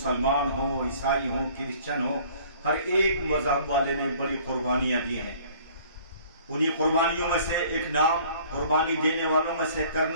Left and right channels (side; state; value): both; inverted; correlation -0.53